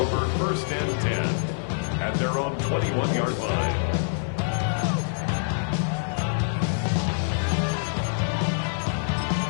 1st and 10 at their own 21-yard line.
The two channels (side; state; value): right; silent; 61 dB below the other